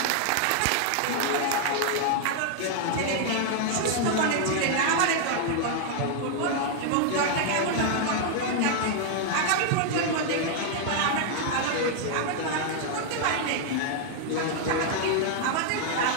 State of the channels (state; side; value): different; both; correlation 0.00